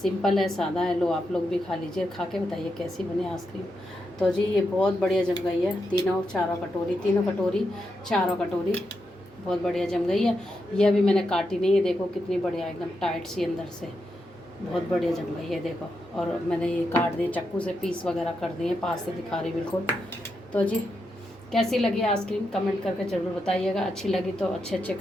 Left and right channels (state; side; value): normal; both; correlation 0.85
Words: सिंपल है, सादा है। लो आप लोग भी खा लीजिए, खा के बताइए कैसी बनी आइसक्रीम। तो जी ये बहुत बढ़िया जम गई है, तीनों कटोरी चारों कटोरी बहुत बढ़िया जम गई है। ये अभी मैंने काटी नहीं है, देखो कितनी बढ़िया एकदम टाइट सी अंदर से, बहुत बढ़िया जम गई है देखो। और मैंने ये काट दिए चाकू से, पीस वगैरह कर दिए, पास से दिखा रही बिल्कुल। तो जी कैसी लगी आइसक्रीम कमेंट करके ज़रूर बताइएगा। अच्छी लगी तो अच्छे